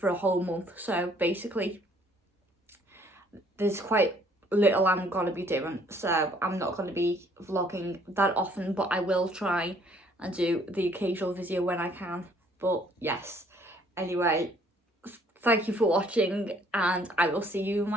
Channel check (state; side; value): normal; both; correlation 0.62